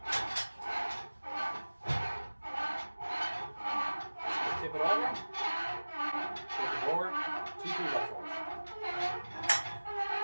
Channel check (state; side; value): inverted; both; correlation -1.00